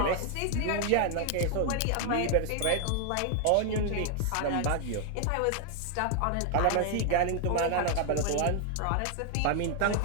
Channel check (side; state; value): both; different; correlation 0.00